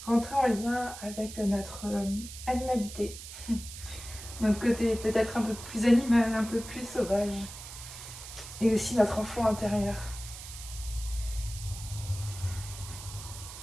rentrer en lien avec notre animalité, notre côté peut-être un peu plus animal, un peu plus sauvage, et aussi notre enfant intérieur.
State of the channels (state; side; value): noise; right; hiss, 12 dB below the sound